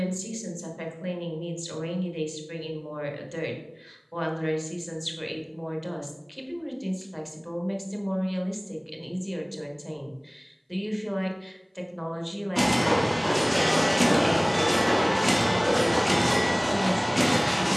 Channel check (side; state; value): both; identical; correlation 1.00